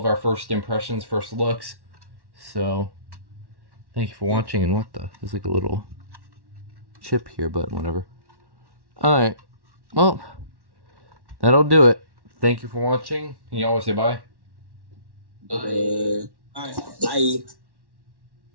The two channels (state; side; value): late; left; 1.1 ms